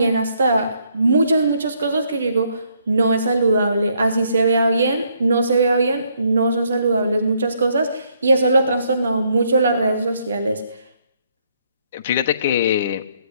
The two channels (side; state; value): both; inverted; correlation -0.71